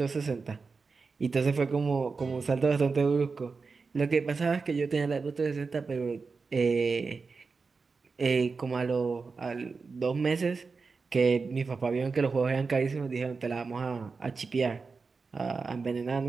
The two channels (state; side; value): quieter; left; 4.6 dB